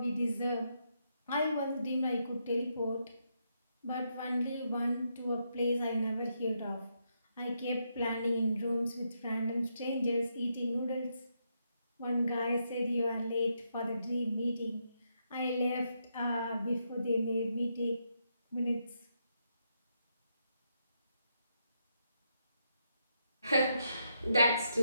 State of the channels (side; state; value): both; inverted; correlation -0.80